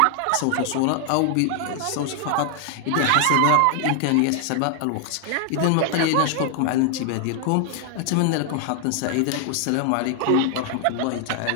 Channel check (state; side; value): different; both; correlation 0.00